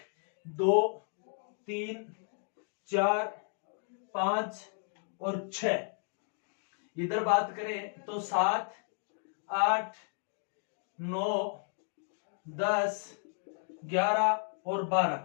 2, 3, 4, 5 और 6। इधर बात करें तो 7, 8, 9, 10, 11 और 12।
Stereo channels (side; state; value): right; silent; 55 dB below the other